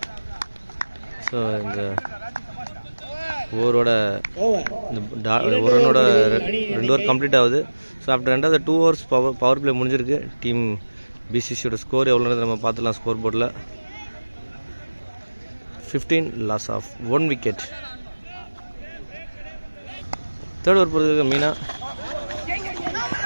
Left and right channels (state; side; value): inverted; both; correlation -1.00